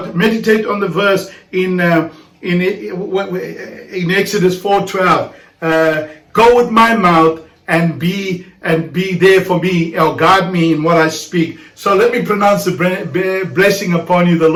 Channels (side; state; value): both; identical; correlation 1.00